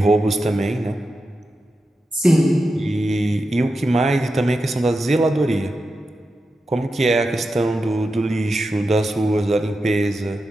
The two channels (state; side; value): normal; both; correlation 0.89